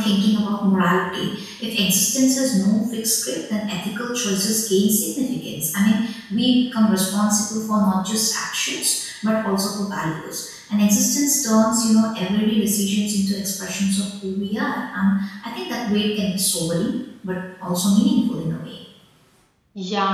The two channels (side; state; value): both; identical; correlation 1.00